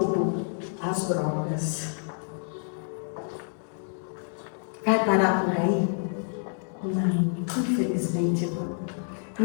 as drogas. Vai parar por aí? Não, infelizmente não.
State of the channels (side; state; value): right; silent; digital silence